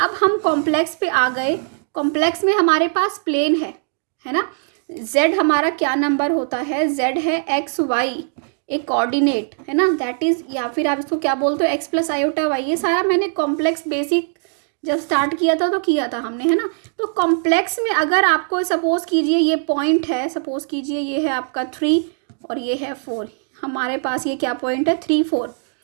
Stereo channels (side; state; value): left; silent; 58 dB below the other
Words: हम कॉम्प्लेक्स पे आ गए, कॉम्प्लेक्स में हमारे पास प्लेन है ना। z हमारा क्या नंबर होता है, z है एक्स वाई, एक कोऑर्डिनेट है ना, दैट इज, या फिर आप इसको क्या बोलते हो, एक्स प्लस आयोटा वाई। ये सारा मैंने कॉम्प्लेक्स बेसिक जब स्टार्ट किया था तो किया था हमने, है ना। तो कॉम्प्लेक्स में अगर आपको सपोज कीजिए ये पॉइंट है, सपोज कीजिए ये है आपका 3 और ये है 4, हमारे पास ये क्या पॉइंट है, 3 4,